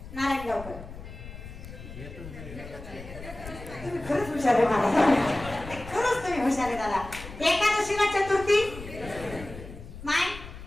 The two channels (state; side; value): noise; left; rumble, 13 dB below the sound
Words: नारायण गावकर तुम्ही खरंच हुशार आहे मला. खरंच तुम्ही हुशार आहे दादा. एकादशीला चतुर्थी माय